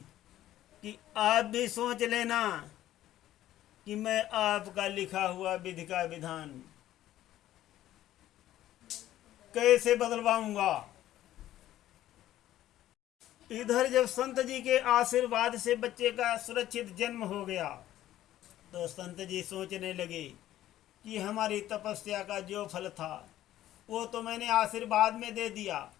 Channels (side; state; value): right; quieter; 13.4 dB